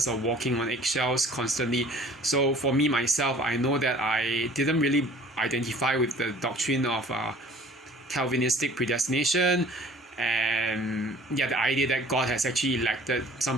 of walking on eggshells constantly. So for me myself, I know that I didn't really identify with the doctrine of Calvinistic predestination, and the idea that God has actually elected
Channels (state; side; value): normal; both; correlation 0.50